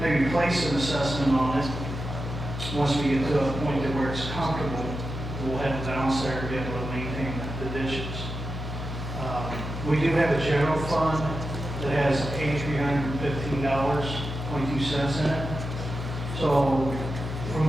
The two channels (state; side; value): noise; left; hum, 6 dB below the sound